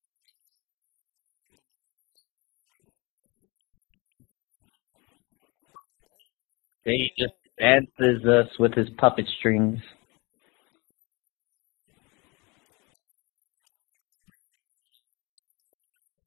gonna bring it back up, and I'm gonna shrug. But you're already bringing it up. With his puppet strings. The entire... this isn't on the teleprompt, by the way. This is just for making this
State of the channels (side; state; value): right; quieter; 27.1 dB